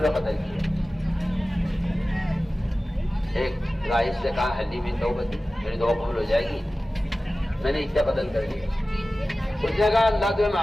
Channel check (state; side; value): normal; both; correlation 0.96